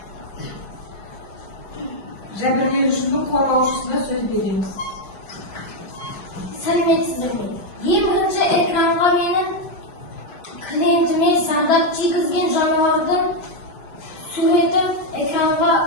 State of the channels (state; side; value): late; right; 5.5 ms